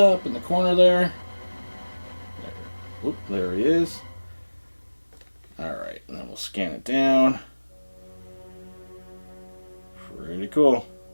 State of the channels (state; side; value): inverted; both; correlation -1.00